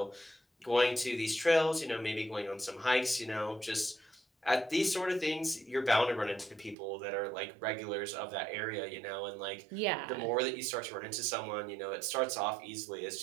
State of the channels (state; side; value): drops out; left; at 6.8 s